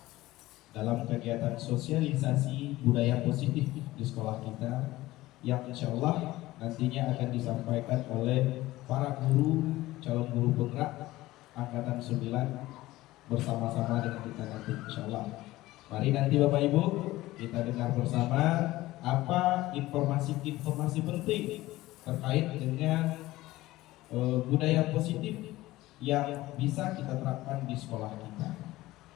dalam kegiatan sosialisasi budaya positif di sekolah kita, yang insya Allah nantinya akan disampaikan oleh para guru, calon guru penggerak Angkatan 9 bersama-sama dengan kita nanti insya Allah. Mari nanti Bapak Ibu kita dengar bersama apa informasi-informasi penting terkait dengan budaya positif yang bisa kita terapkan di sekolah kita.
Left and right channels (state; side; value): quieter; right; 17.5 dB